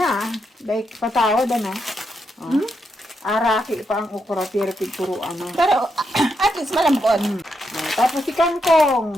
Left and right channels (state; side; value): normal; both; correlation 0.82